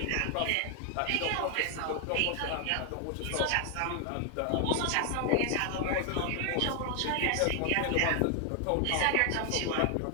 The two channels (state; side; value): different; both; correlation 0.00